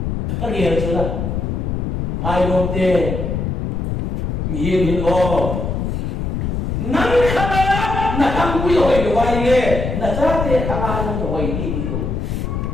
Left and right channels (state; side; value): noise; left; rumble, 2 dB below the sound